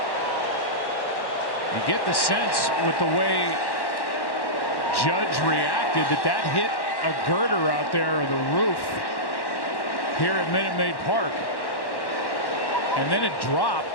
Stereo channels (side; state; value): right; late; 1.1 ms